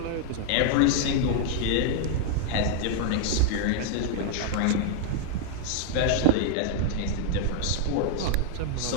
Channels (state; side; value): different; both; correlation -0.01